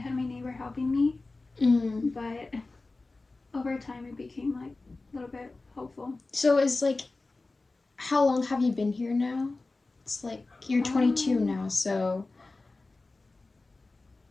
my neighbor helping me, but over time, it became like a little bit hopeful. So it's like, how long have you been here now? It's like you're 22 now, so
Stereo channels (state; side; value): quieter; right; 3.4 dB